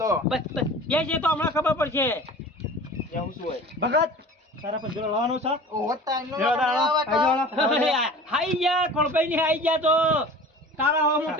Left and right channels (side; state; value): both; normal; correlation 0.40